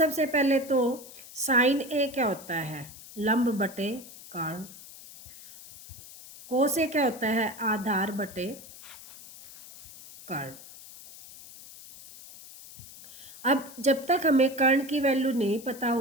पहले तो साइन ए क्या होता है, लंब बटे कर्ण। कोस ए क्या होता है, आधार बटे कर्ण। अब जब तक हमें कर्ण की वैल्यू नहीं पता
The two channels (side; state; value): left; noise; hiss, 17 dB below the sound